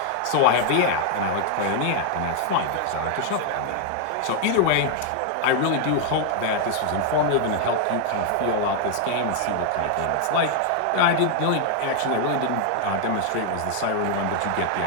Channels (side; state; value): both; different; correlation 0.00